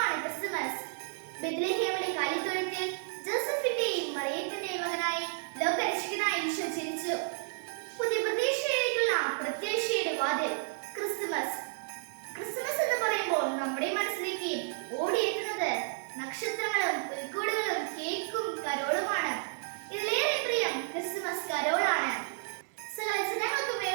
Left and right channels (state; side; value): silent; left; 57 dB below the other